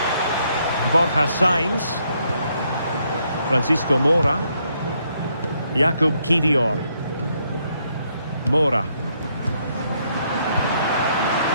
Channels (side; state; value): both; inverted; correlation -0.73